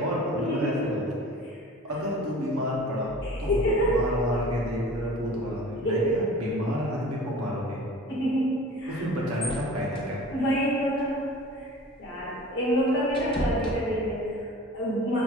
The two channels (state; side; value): normal; both; correlation 0.42